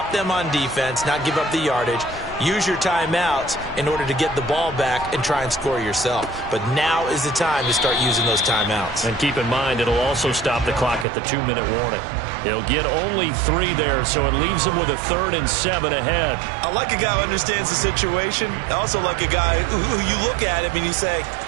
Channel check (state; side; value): drops out; left; at 11.1 s